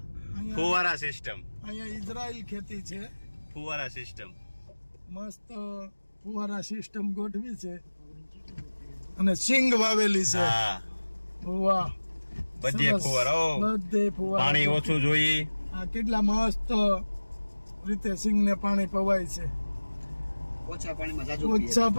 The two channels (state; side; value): inverted; both; correlation -1.00